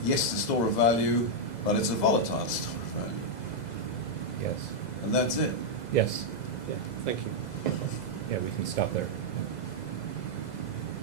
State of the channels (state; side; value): late; right; 2.0 ms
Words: yes, it's a store of value, but it's a volatile store of value, Yes. and that's it. Yes. Yeah, thank you. Yeah, we can stop there.